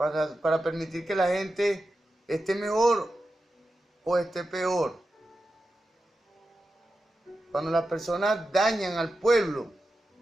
permitir que la gente esté mejor o esté peor. Cuando las personas dañan al pueblo,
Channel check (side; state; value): both; normal; correlation 0.91